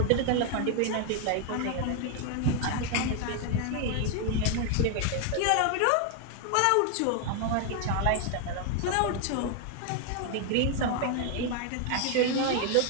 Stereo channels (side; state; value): both; different; correlation 0.00